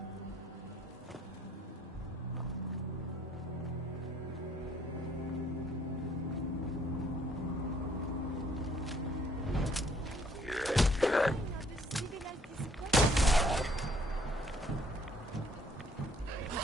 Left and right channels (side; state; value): both; normal; correlation 0.62